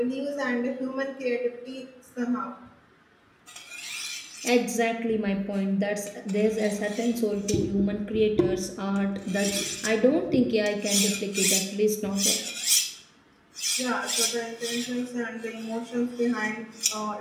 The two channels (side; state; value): both; identical; correlation 1.00